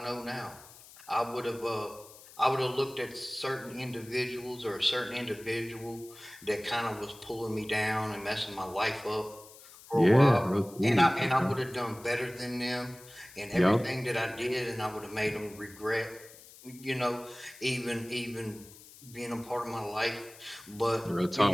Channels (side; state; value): left; noise; hiss, 20 dB below the sound